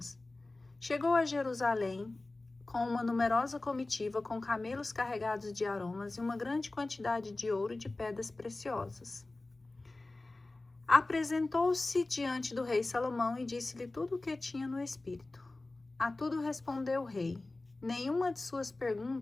Chegou a Jerusalém com uma numerosa comitiva com camelos carregados de aromas e uma grande quantidade de ouro e de pedras preciosas. Apresentou-se diante do rei Salomão e disse-lhe tudo o que tinha no espírito. A tudo respondeu o rei. Nenhuma de suas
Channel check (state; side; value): quieter; right; 3.1 dB